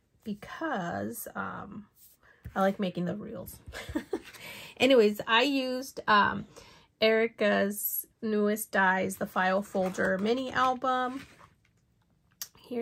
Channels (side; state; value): both; identical; correlation 1.00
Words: because I like making the reels. Anyways, I used Erica's newest dies, the file folder mini album.